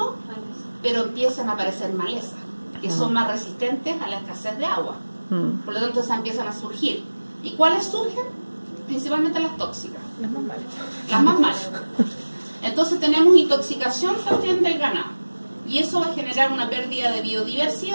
pero empiezan a aparecer malezas, que son más resistentes a la escasez de agua. Por lo tanto, esas empiezan a surgir. ¿Y cuáles surgen? Principalmente las tóxicas. Las más malas. Entonces tenemos intoxicación también del ganado. Y eso va a generar una pérdida de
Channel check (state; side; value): inverted; both; correlation -1.00